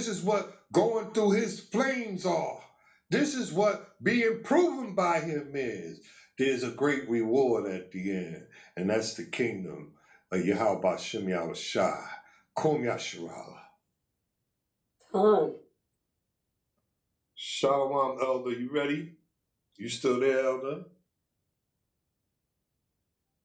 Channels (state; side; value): identical; both; correlation 1.00